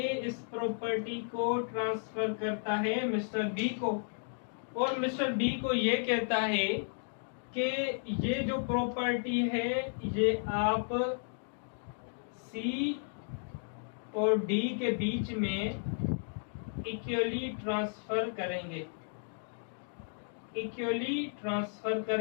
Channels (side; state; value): right; silent; digital silence